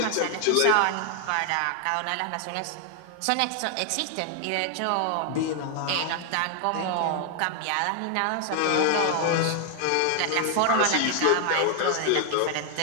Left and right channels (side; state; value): both; different; correlation 0.00